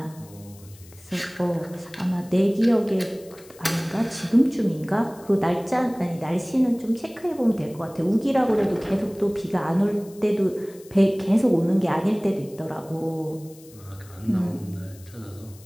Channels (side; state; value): left; noise; hiss, 23 dB below the sound